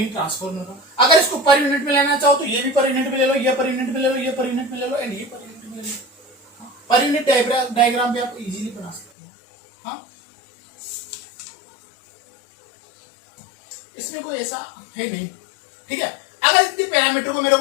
ट्रांसफार्मर का। अगर इसको पर यूनिट में लेना चाहो तो ये भी पर यूनिट में ले लो, ये पर यूनिट में ले लो, ये पर यूनिट में ले लो एंड ये पर यूनिट में ले लो। पर यूनिट डायग्राम भी आप इजीली बना सकते हो। हाँ, इसमें कोई ऐसा है नहीं। ठीक है, अगर इसके पैरामीटर को मेरे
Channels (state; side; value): drops out; right; at 9.1 s